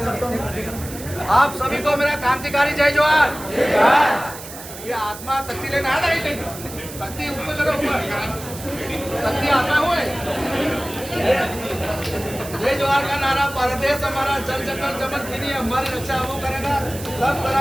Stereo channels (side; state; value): right; noise; hiss, 13 dB below the sound